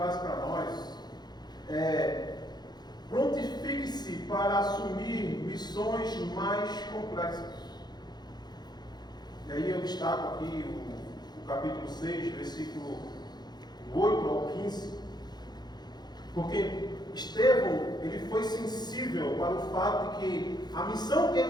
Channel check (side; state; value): right; late; 0.20 ms